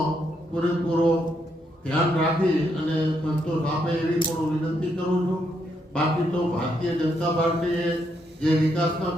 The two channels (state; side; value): normal; both; correlation 0.77